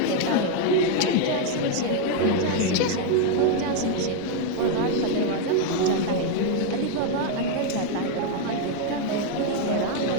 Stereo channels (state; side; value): different; both; correlation 0.01